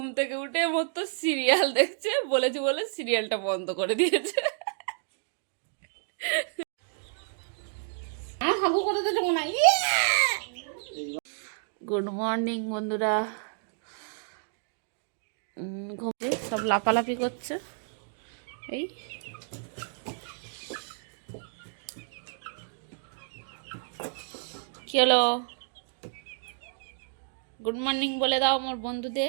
থেকে উঠে মতো সিরিয়াল দেখছে, বলেছি বলে সিরিয়ালটা বন্ধ করে দিয়েছে। হাগু করে দিতে মনে হয়। গুড মর্নিং বন্ধুরা। ঘুমে সব লাপালাপি করছে। এই কি হলো? গুড মর্নিং বলে দাও আমার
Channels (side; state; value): left; silent; digital silence